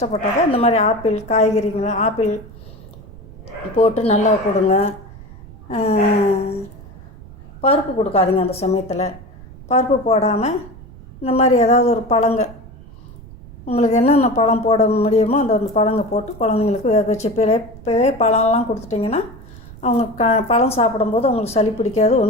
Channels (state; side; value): noise; right; rumble, 18 dB below the sound